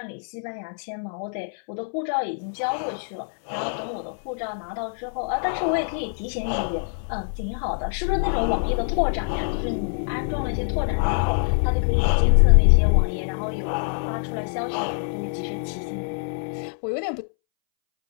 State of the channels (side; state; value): right; silent; 62 dB below the other